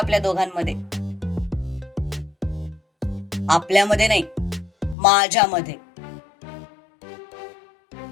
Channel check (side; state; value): right; drops out; at 5.0 s